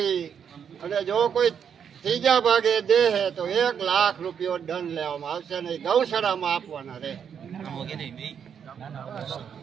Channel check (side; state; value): left; quieter; 7.7 dB